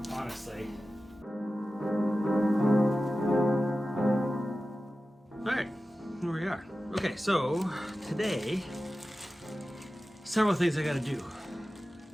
honestly. Alright, here we are. Okay, so today, several things I gotta do.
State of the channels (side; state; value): both; normal; correlation 0.94